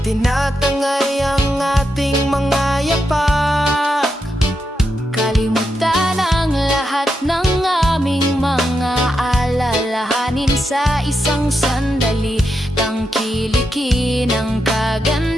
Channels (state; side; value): normal; both; correlation 0.85